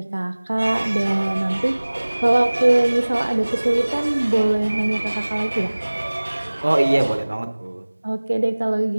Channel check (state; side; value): inverted; both; correlation -1.00